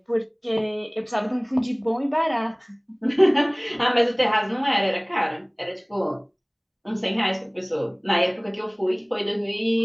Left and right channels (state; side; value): identical; both; correlation 1.00